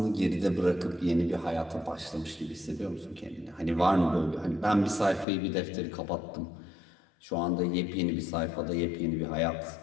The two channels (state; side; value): drops out; right; at 5.2 s